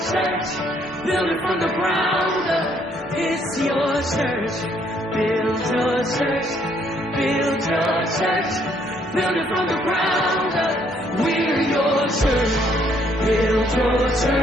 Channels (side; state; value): both; normal; correlation 0.68